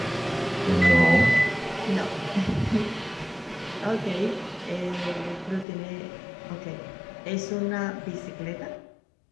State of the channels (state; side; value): drops out; right; at 5.7 s